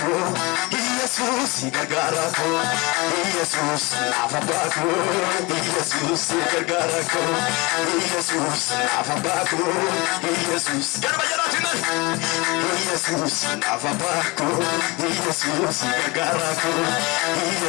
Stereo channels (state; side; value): quieter; right; 24.8 dB